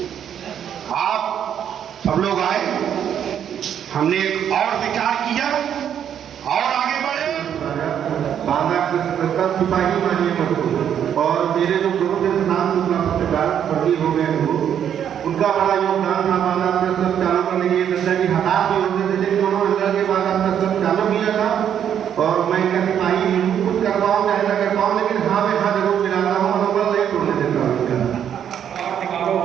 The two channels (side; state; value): left; quieter; 9.1 dB